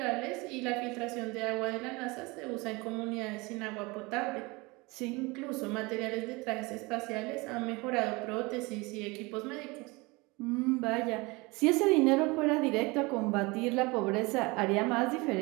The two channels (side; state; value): left; quieter; 25.1 dB